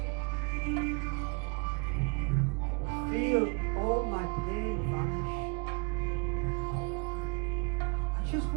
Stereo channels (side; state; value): left; quieter; 33.4 dB